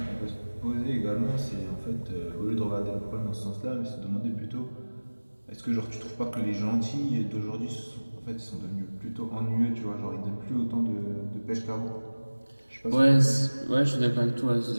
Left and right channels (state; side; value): inverted; both; correlation -1.00